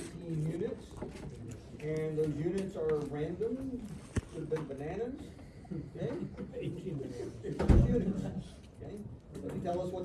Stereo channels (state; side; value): identical; both; correlation 1.00